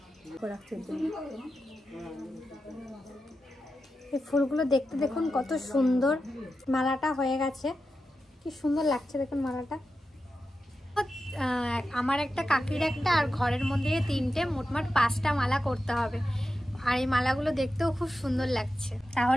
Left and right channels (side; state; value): both; normal; correlation 0.91